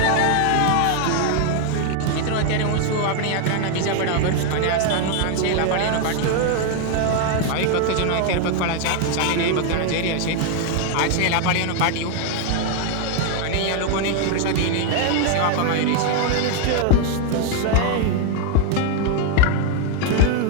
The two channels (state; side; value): different; both; correlation 0.00